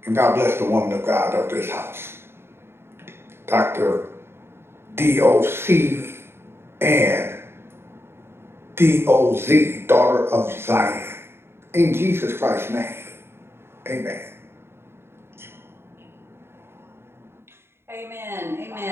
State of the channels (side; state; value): left; late; 0.12 ms